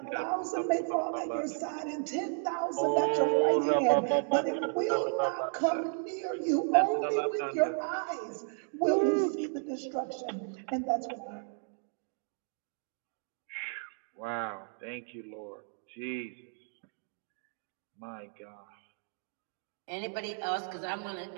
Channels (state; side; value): silent; left; 55 dB below the other